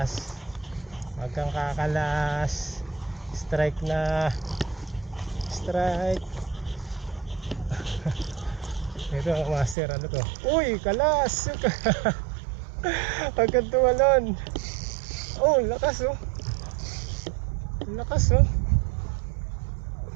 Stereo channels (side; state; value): left; drops out; at 9.8 s